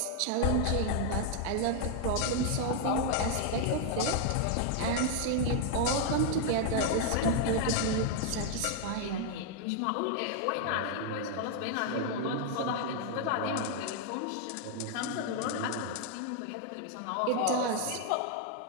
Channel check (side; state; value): both; different; correlation 0.00